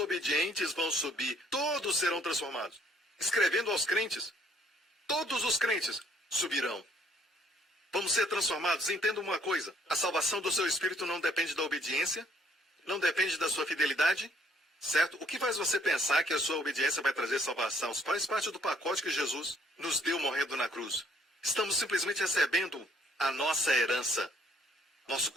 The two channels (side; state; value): both; normal; correlation 0.64